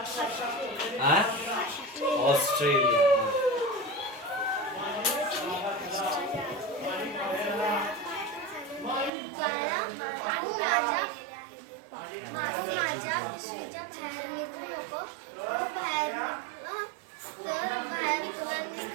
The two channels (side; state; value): left; drops out; at 9.1 s